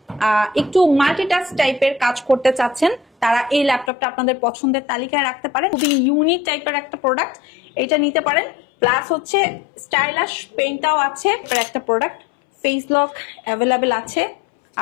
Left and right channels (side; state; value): right; drops out; at 3.9 s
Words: একটু মাল্টিটাস্ক টাইপের কাজ করতে চাচ্ছেন তারা এই ল্যাপটপটা আপনাদের পছন্দের তালিকায় রাখতে পারেন। খুবই ইউনিক টাইপের একটা প্রোডাক্ট, এটা নিতে পারেন। প্লাস হচ্ছে স্টাইলিশ পেনটাও আছে একটা প্রোডাক্ট, ফেস লক অ্যাভেলেবেল আছে,